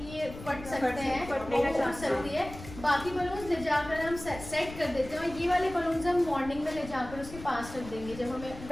ये फट सकते हैं, फटने का चांस सकती है। बाकी बलून्स ले जाकर हम सेट कर देते हैं और ये वाले बलून्स हम मॉर्निंग में ले जाकर उसके पास रख देंगे जब हमें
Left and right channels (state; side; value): noise; left; rumble, 13 dB below the sound